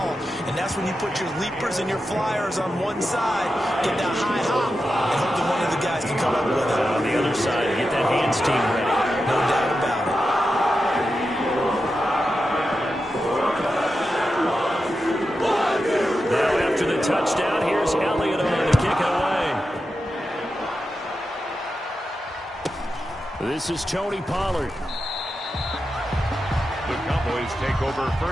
And that's when you put your leapers and your flyers on one side, get that high hop, and hope that one of the guys can come up with it. On the other side, get that hands team ready. No doubt about it. Now after the touchdown, here's Elliott on to kick it away. This is Tony Pollard. The Cowboys take over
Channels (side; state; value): both; normal; correlation 0.90